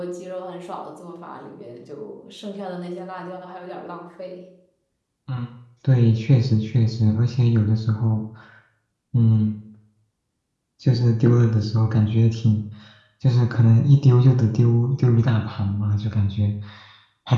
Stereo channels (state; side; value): identical; both; correlation 1.00